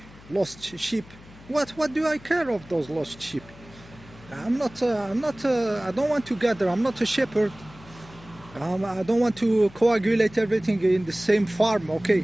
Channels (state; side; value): noise; left; hum, 21 dB below the sound